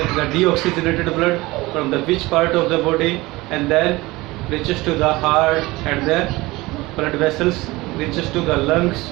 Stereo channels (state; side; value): quieter; left; 20.7 dB